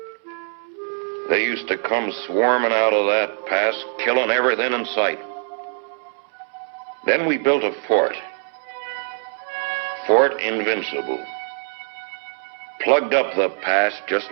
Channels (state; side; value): silent; left; 64 dB below the other